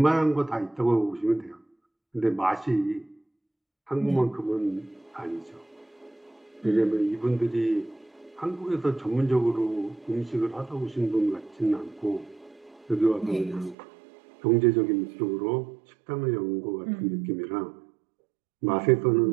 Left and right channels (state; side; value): drops out; left; at 13.8 s